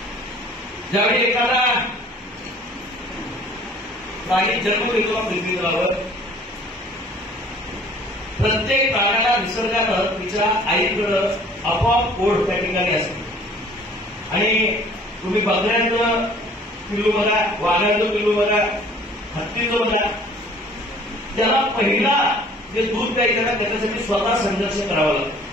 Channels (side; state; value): both; normal; correlation 0.52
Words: ज्यावेळी एखादा प्राणी जन्म घेतो पृथ्वीवर, प्रत्येक प्राण्याला निसर्गानं तिच्या आईकडं आपोआप ओढ त्या ठिकाणी असते. आणि तुम्ही बकऱ्यांचं पिल्लू बघा, वाघाचं पिल्लू बघा, हत्तीचं बघा, त्याला पहिला जे दूध प्यायचं ना त्याच्यासाठी स्वतः संघर्ष करावा लागतो.